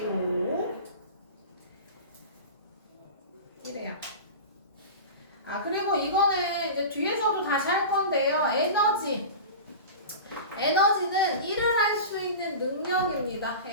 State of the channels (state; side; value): inverted; both; correlation -0.30